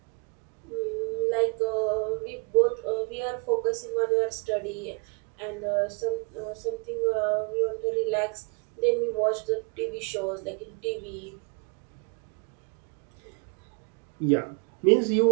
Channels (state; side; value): quieter; left; 34.2 dB